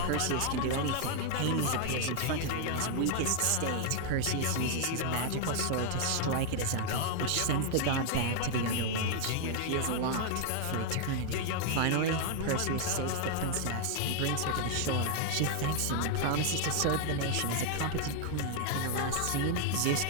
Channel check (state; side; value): different; both; correlation 0.00